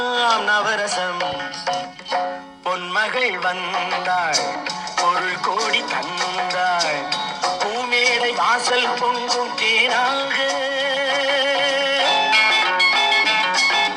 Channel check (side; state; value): both; identical; correlation 1.00